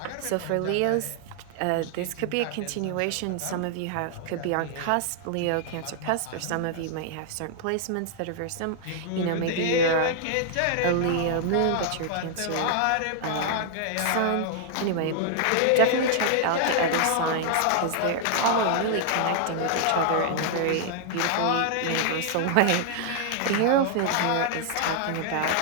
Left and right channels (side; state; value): both; different; correlation -0.01